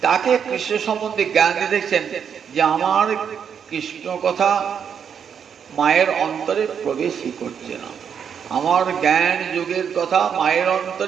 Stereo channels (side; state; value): left; quieter; 7.5 dB